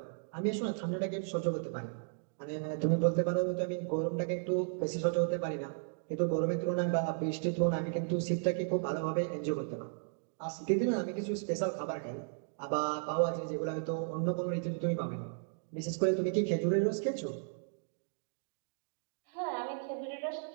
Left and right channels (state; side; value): silent; left; digital silence